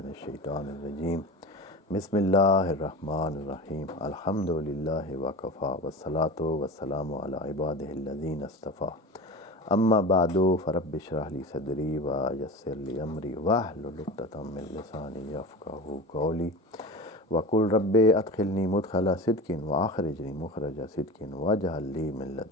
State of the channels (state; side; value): normal; both; correlation 0.30